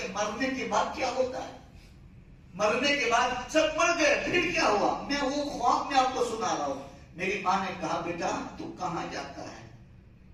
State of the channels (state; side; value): identical; both; correlation 1.00